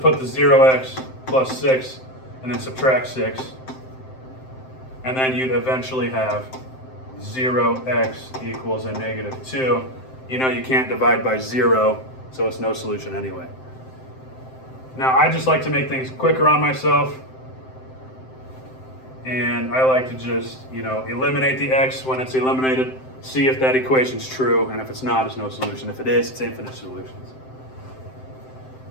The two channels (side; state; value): right; late; 7.7 ms